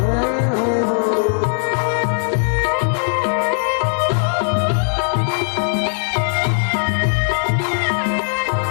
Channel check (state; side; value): silent; right; digital silence